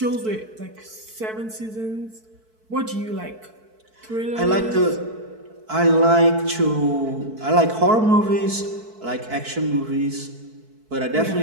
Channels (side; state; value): left; late; 4.6 ms